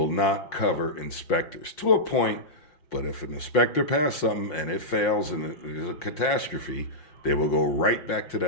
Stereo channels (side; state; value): right; late; 5.6 ms